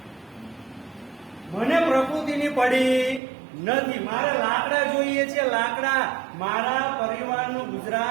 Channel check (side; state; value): left; drops out; at 3.2 s